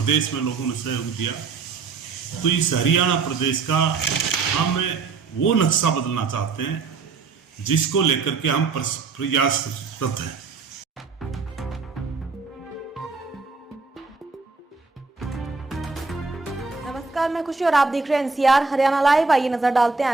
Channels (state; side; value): quieter; left; 4.6 dB